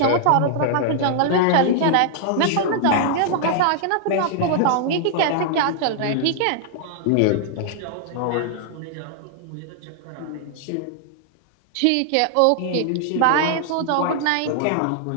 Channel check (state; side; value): different; both; correlation -0.01